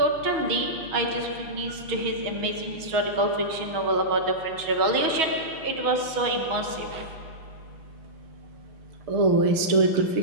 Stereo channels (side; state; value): left; late; 6.3 ms